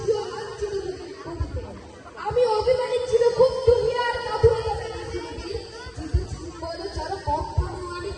লাঞ্ছিত বুকে আমি অভিমানী ছিল খুব দুনিয়ার কাঁধুরে পৃথিবীর চিত্তচুম্বন চর কম্পন আমি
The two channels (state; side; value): identical; both; correlation 1.00